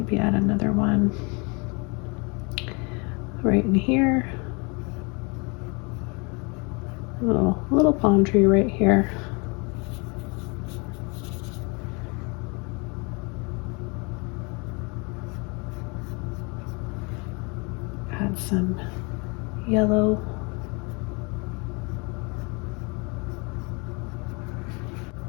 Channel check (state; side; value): quieter; right; 31.2 dB